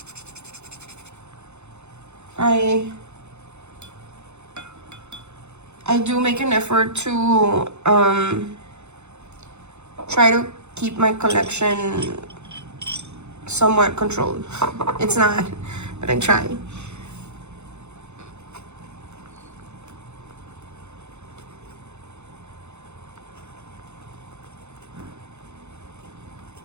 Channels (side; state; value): left; late; 0.82 ms